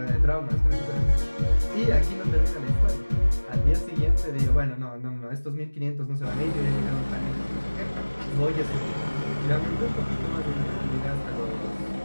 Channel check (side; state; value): both; inverted; correlation -1.00